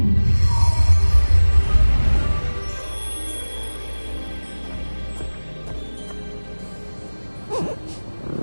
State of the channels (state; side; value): inverted; both; correlation -1.00